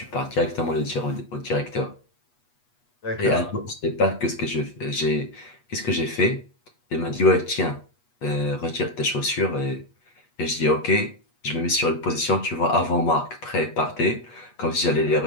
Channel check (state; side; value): late; right; 8.3 ms